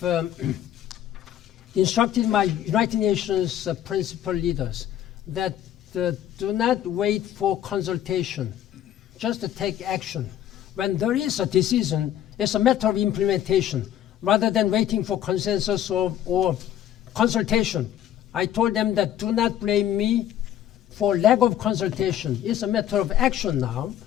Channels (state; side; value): quieter; right; 11.2 dB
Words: instructed my United Nations principal leaders that do not wait for consultation, just to take action. When there is a decision, it's a matter of implementation, rather than waiting for consensus or consultation. I told them that do not blame me for lack of consultation. It's a matter of action now.